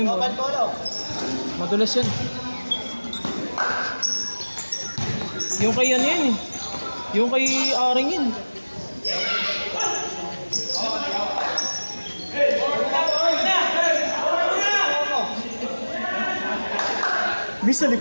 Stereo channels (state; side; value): inverted; both; correlation -1.00